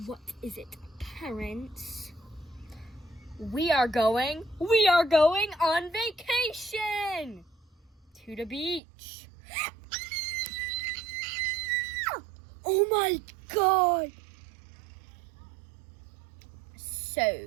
What is it, parents? We are going on vacation to the beach. Oh my God.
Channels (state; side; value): drops out; left; at 8.8 s